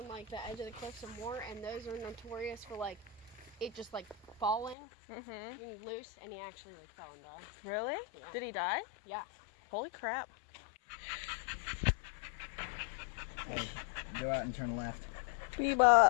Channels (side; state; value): right; drops out; at 4.8 s